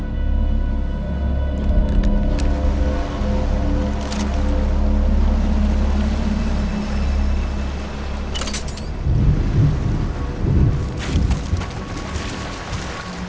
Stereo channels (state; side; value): identical; both; correlation 1.00